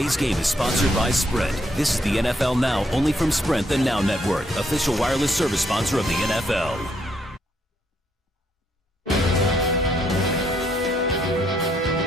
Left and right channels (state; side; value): normal; both; correlation 0.73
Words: game is sponsored by Sprint. This is the NFL Now, only from Sprint, the Now Network, official wireless service sponsor of the NFL.